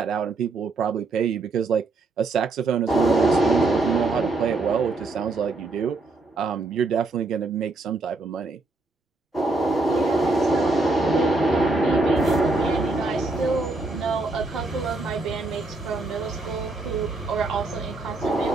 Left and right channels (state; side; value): quieter; left; 3.3 dB